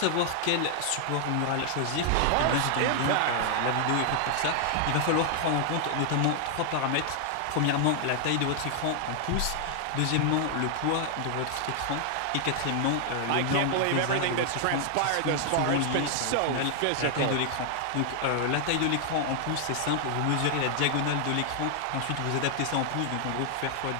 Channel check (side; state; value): both; different; correlation 0.00